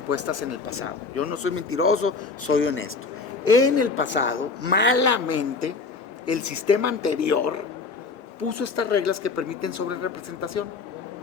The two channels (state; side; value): quieter; right; 4.4 dB